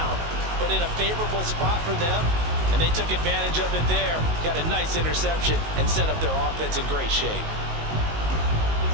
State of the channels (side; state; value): left; late; 19 ms